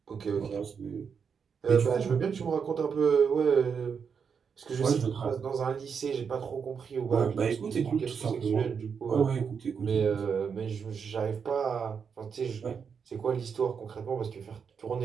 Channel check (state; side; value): quieter; left; 6.4 dB